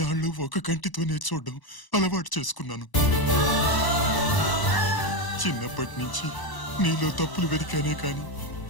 ఒక కంటితోనే చూడడం అలవాటు చేసుకున్నాను. చిన్నప్పటి నుంచి నీలో తప్పులు వెతికానే కాని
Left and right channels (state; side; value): late; right; 1.0 ms